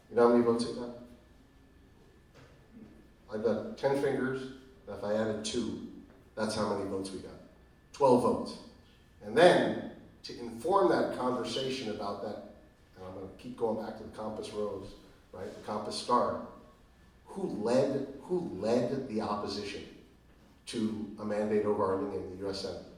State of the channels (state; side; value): identical; both; correlation 1.00